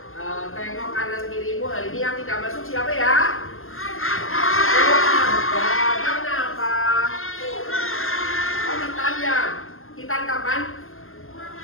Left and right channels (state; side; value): late; right; 0.61 ms